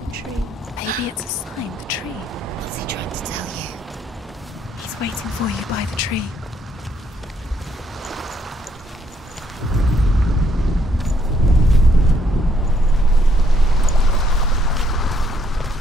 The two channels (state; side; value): normal; both; correlation 0.70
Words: the tree. Maybe it's a sign, the tree. What's he trying to tell you? He's waiting for you by the tree.